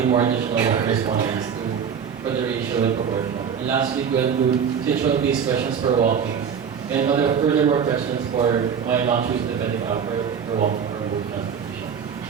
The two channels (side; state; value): left; quieter; 7.3 dB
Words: more additional respondents for the ratio and proportion. And lastly, to include situational-based questions for walking, and furthermore questions for why not choose the pedicab for walking or both transportation.